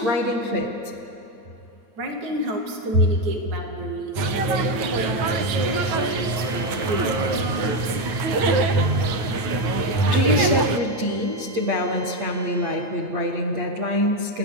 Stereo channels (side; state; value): left; late; 9.2 ms